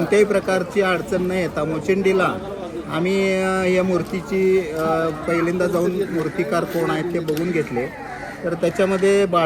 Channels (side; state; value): both; identical; correlation 1.00